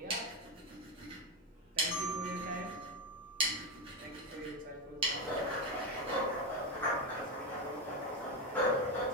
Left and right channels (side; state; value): both; normal; correlation 0.10